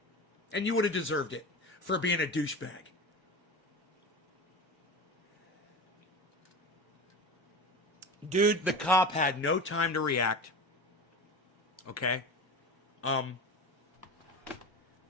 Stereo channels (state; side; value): normal; both; correlation 0.29